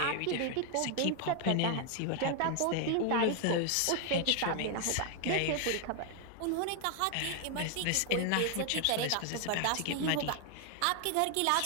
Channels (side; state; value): both; different; correlation 0.00